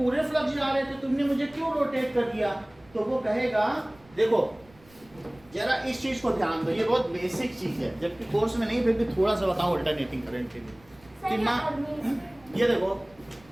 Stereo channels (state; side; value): noise; right; rumble, 27 dB below the sound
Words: फ्लक्स जा रहे थे, तुमने मुझे क्यों रोटेट कर दिया? तो वो कहेगा देखो जरा इस चीज को ध्यान दो, ये बहुत बेसिक चीज है, जबकि कोर्स में नहीं, फिर भी थोड़ा सा बताऊं अल्टरनेटिंग करंट के लिए। सर ये देखो